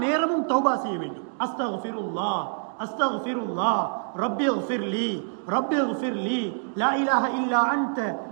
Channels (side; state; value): left; silent; 60 dB below the other